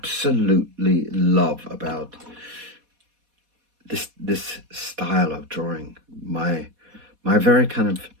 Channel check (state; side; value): late; left; 4.1 ms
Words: love about this style of drawing. My very kind of